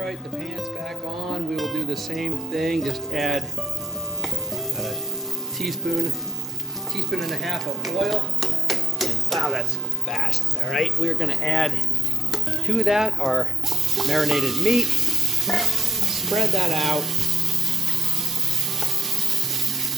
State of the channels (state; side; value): normal; both; correlation 0.76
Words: the pan's back on. We will do the same thing. Just add a teaspoon and a half of oil. And wow, that's fast. All right, we're gonna add to that our marinated meat. Spread that out.